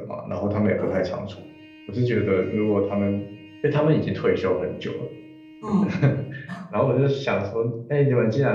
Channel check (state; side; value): identical; both; correlation 1.00